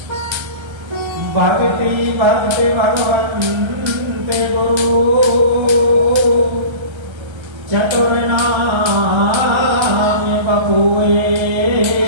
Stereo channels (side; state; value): left; late; 1.3 ms